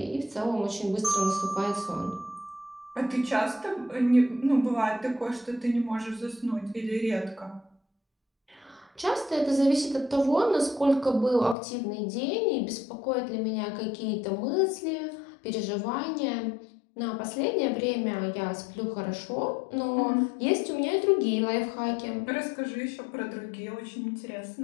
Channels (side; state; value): right; drops out; at 11.6 s